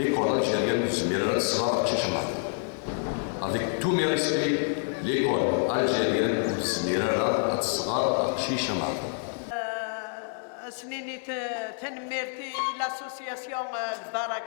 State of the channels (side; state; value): right; silent; 59 dB below the other